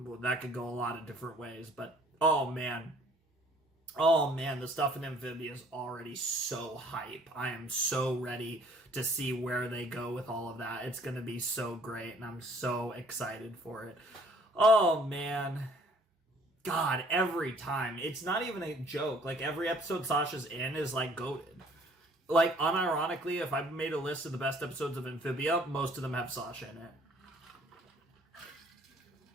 could go a lot of different ways. But oh man, the stuff in Amphibia is already so hype. I am so ready to see where they go with all of that. It's going to be so great, and I'm so excited for it. Oh, man. God, every time. It's not even a joke. Like, every episode Sasha's in is, like, goated. Like, unironically, if I made a list of the best episodes of Amphibia, most of them have Sasha in it.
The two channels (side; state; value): both; normal; correlation 0.58